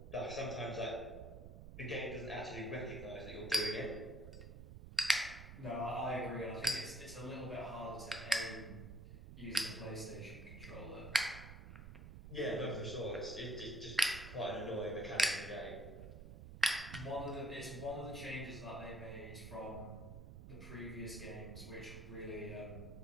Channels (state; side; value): noise; right; rumble, 12 dB below the sound